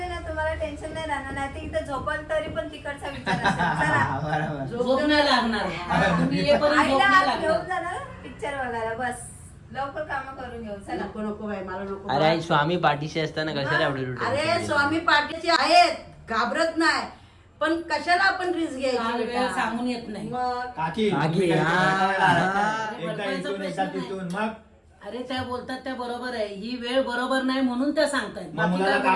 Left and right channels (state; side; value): identical; both; correlation 1.00